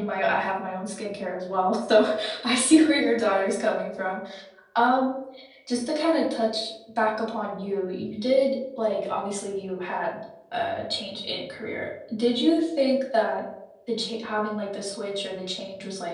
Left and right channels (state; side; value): identical; both; correlation 1.00